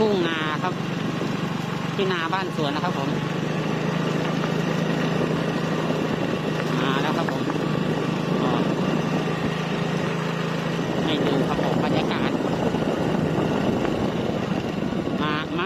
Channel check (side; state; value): both; identical; correlation 1.00